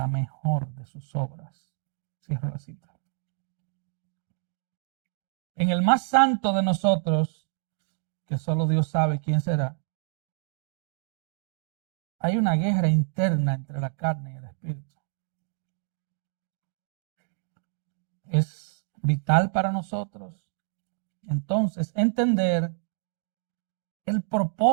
mejor de sus obras. Cierro la cita. En el más santo de nosotros, que solo Dios sabe quién será, hay una guerra interna entre la carne y el espíritu. Es vital para nosotros entonces entender el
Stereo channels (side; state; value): left; silent; 59 dB below the other